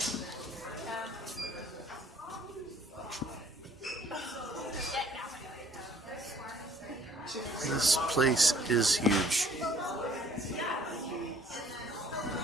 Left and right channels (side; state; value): both; normal; correlation 0.59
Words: This place is huge.